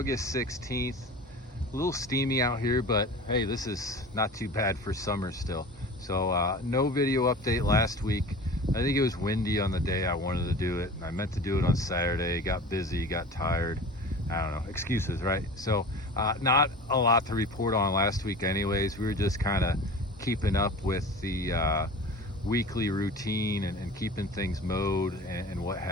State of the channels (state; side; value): normal; both; correlation 0.37